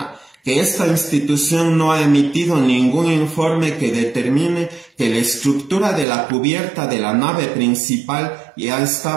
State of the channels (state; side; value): drops out; left; at 6.1 s